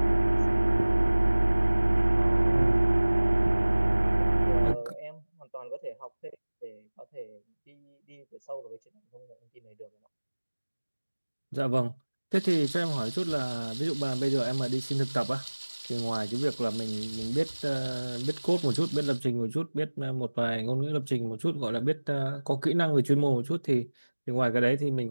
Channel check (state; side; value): inverted; both; correlation -1.00